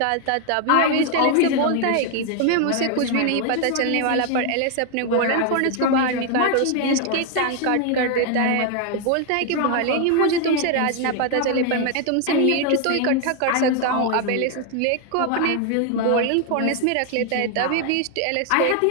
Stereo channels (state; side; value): different; both; correlation 0.01